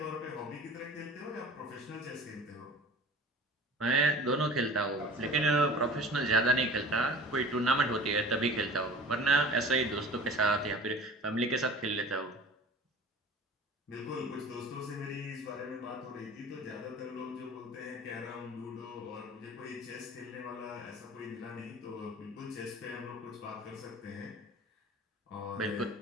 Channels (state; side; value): normal; both; correlation 0.42